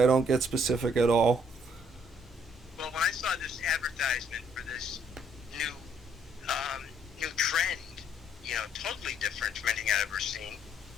don't get specific at all. Well, when I saw this advertisement for this new new trend, totally different from anything I've ever seen.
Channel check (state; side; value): normal; both; correlation 0.66